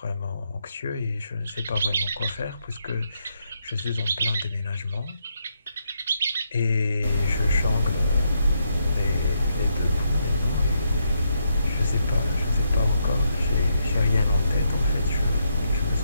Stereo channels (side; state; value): both; inverted; correlation -0.78